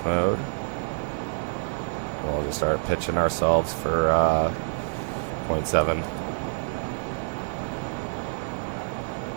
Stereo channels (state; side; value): silent; left; digital silence